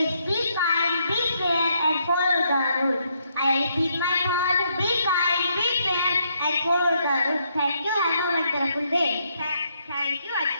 be kind, be fair, and follow the rules. I repeat my thought: be kind, be fair, and follow the rules. Thank you. Have a wonderful day. Thank you,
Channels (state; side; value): inverted; both; correlation -0.74